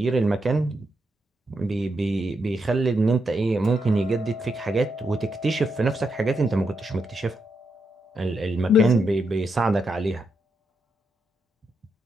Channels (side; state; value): both; normal; correlation 0.82